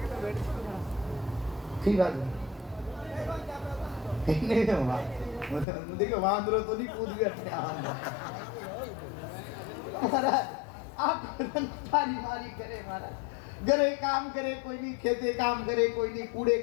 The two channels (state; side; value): drops out; right; at 5.7 s